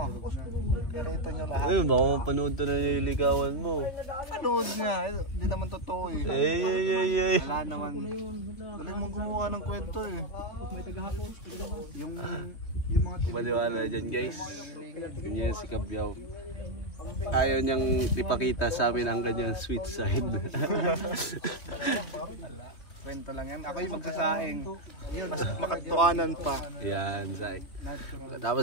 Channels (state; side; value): late; right; 3.0 ms